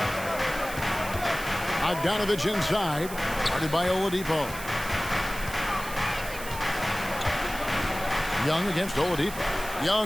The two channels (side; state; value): right; noise; hiss, 12 dB below the sound